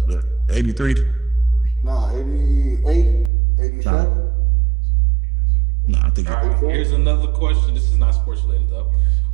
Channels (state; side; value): drops out; left; at 3.3 s